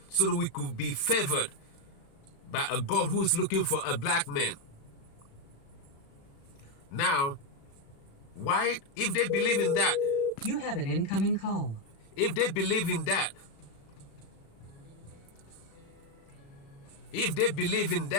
so that we could be favored by a God who is looking for a black man. Now, why, if they believe in that? You have an incoming call. If they believe in that,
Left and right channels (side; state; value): right; late; 36 ms